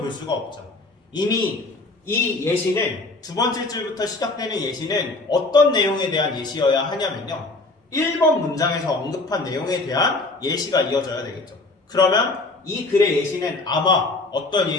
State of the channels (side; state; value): right; quieter; 3.2 dB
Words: 수가 없죠. 이미 이 예시는 두 번째 줄부터 시작되는 예시는 어떤 내용에 대한 예시여야 하냐면요. 1번 문장에서 언급한 내용에 대한 예시가 이어져야 되겠죠. 그러면 이 글의 예시는 아마 어떤